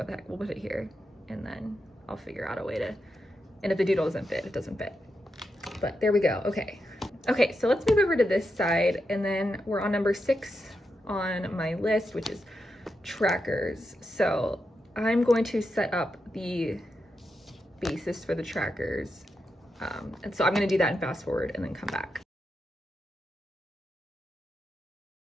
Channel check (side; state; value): both; normal; correlation 0.86